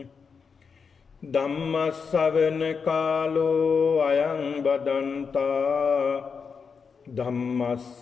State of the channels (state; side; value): quieter; right; 5.7 dB